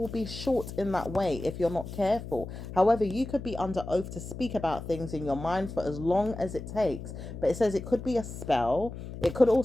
be short in that way if you're not careful. However, you could be under oath to speak about things in your mind for as long as it takes. But it says it could be a spell. It could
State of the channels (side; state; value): left; noise; hum, 10 dB below the sound